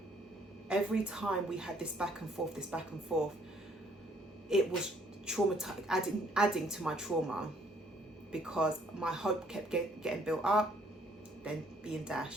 every time we had this back and forth, it was traumatizing, adding to my trauma, because my hope kept getting built up, then being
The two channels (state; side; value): normal; both; correlation 0.64